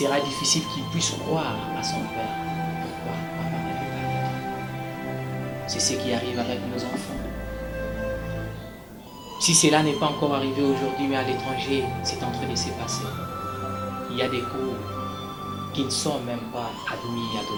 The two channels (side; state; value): both; identical; correlation 1.00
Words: qu'il puisse croire à son père. Pourquoi papa n'avait pas le temps? C'est ce qui arrive avec nos enfants. Si cela n'est pas encore arrivé aujourd'hui, mais à l'étranger, c'est en train de se passer. Il y a des cours qui ne sont même pas admis à